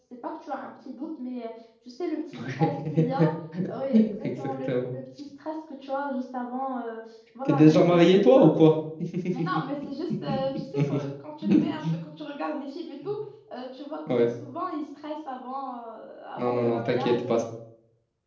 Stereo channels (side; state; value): both; identical; correlation 1.00